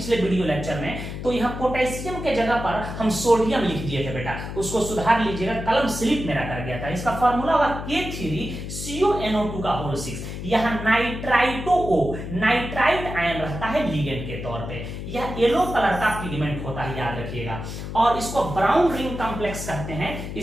वीडियो लेक्चर में, तो यहाँ पोटेशियम के जगह पर हम सोडियम लिख दिए थे बेटा, उसको सुधार लीजिएगा, कलम स्लिप मेरा कर गया था। इसका फॉर्मूला होगा K3CONO2 का होल 6। यहाँ नाइट्राइट आयन रहता है लिगेंड के तौर पे। यह येलो कलर का पिगमेंट होता है, याद रखिएगा। और इसको ब्राउन रिंग कॉम्प्लेक्स कहते हैं।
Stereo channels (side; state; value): left; noise; hum, 7 dB below the sound